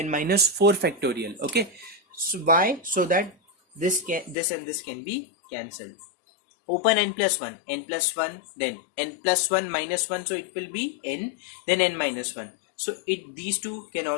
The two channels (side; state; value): right; drops out; at 4.4 s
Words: minus 4 factorial. Okay. So why? So that this and this can be cancelled. Open n plus 1, then n plus 1 minus 1, so it will be n, then n minus 1. So these two can